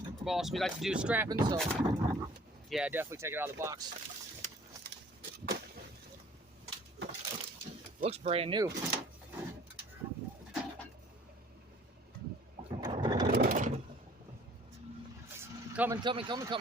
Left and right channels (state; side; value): normal; both; correlation 0.53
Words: we like to do scrapping, so yeah, definitely take it out of the box. Looks brand new. Coming, coming, coming,